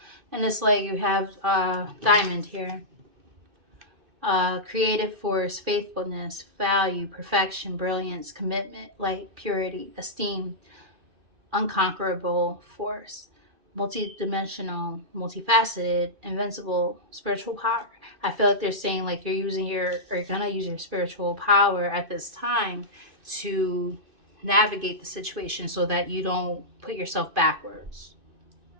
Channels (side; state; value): left; late; 2.6 ms